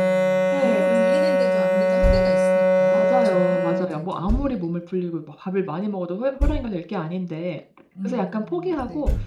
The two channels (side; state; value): both; identical; correlation 1.00